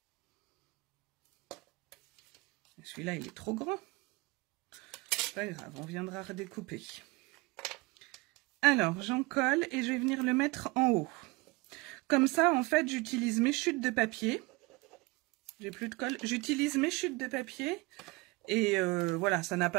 Celui-là, il est trop grand. C'est pas grave, on viendra redécouper. Alors, j'en colle et je vais venir le mettre en haut. Comme ça, en fait, j'utilise mes chutes de papier. J'ai plus de colle. J'utilise mes chutes de papier. Et voilà, ça n'a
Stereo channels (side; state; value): left; quieter; 24.3 dB